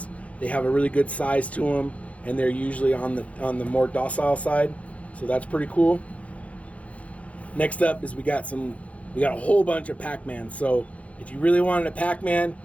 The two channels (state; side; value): late; right; 0.065 ms